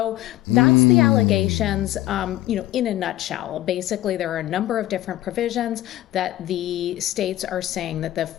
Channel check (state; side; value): quieter; right; 15.4 dB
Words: that's the allegations, in a nutshell. Basically, there are a number of different provisions that the states are saying that the